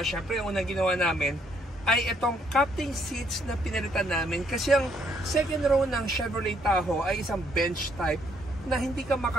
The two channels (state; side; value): normal; both; correlation 0.69